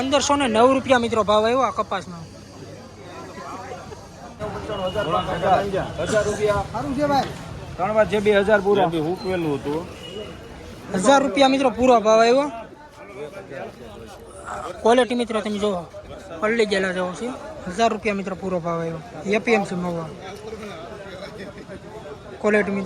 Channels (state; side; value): identical; both; correlation 1.00